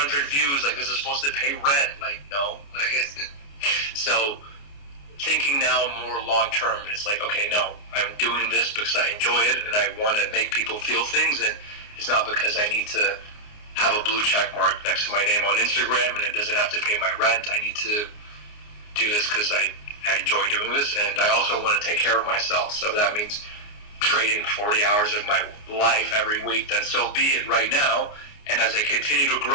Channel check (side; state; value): right; late; 29 ms